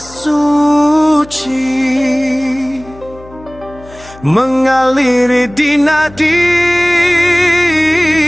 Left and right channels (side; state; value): left; noise; hum, 21 dB below the sound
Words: mengaliri di nadi,